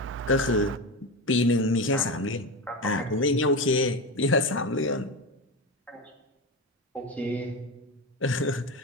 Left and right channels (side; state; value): both; normal; correlation 0.20